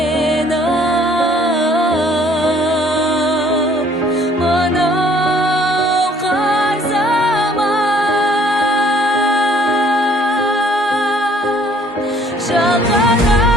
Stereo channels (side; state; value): both; normal; correlation 0.59